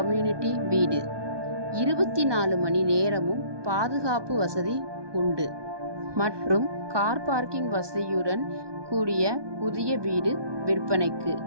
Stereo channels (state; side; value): late; left; 1.2 ms